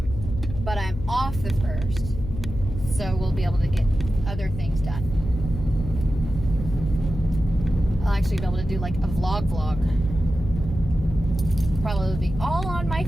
but I'm off the first, so we'll be able to get other things done. I'll actually be able to do like a vlog. Probably be all on my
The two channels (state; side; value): noise; left; hum, 8 dB below the sound